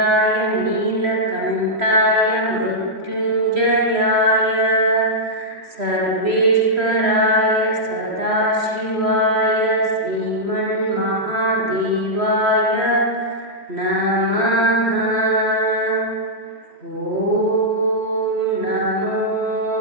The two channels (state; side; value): late; left; 3.1 ms